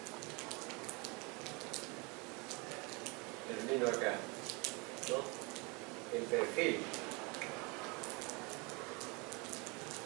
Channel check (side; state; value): left; quieter; 28.9 dB